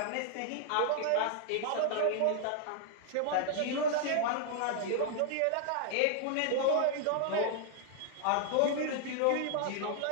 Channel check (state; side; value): different; both; correlation 0.00